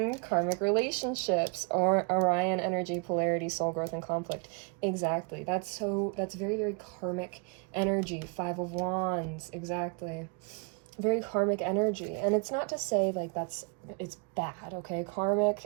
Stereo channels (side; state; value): left; quieter; 35.8 dB